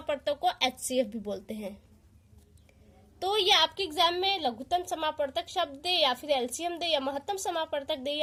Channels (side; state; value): both; identical; correlation 1.00